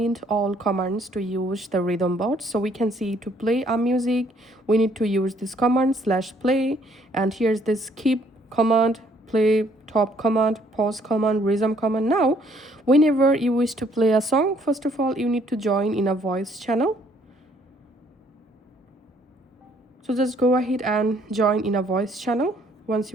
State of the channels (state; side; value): normal; both; correlation 0.64